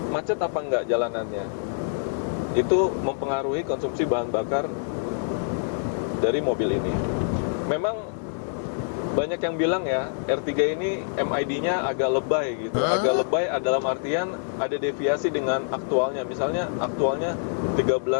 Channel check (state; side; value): silent; right; digital silence